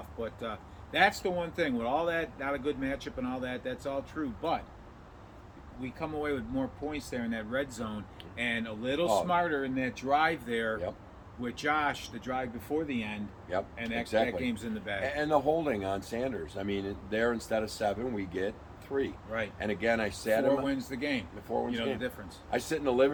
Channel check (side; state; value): both; identical; correlation 1.00